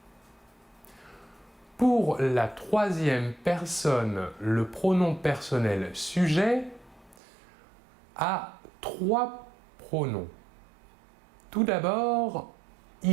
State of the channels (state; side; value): drops out; left; at 7.2 s